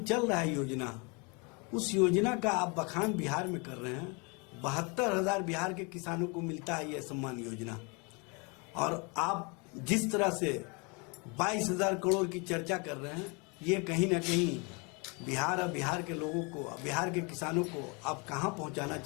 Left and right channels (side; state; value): right; quieter; 31.4 dB